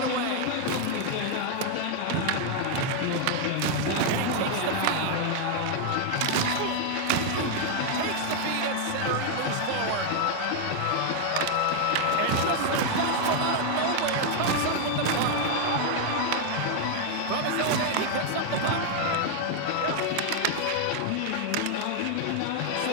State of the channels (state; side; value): different; both; correlation 0.00